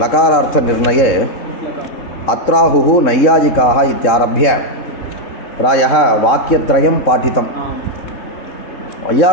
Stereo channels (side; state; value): right; late; 3.7 ms